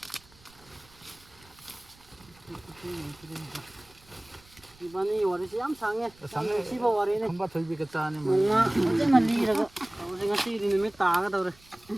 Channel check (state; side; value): noise; right; rumble, 27 dB below the sound